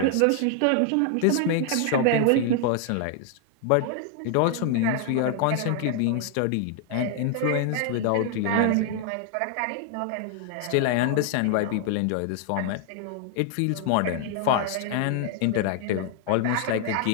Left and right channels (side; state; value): both; different; correlation 0.00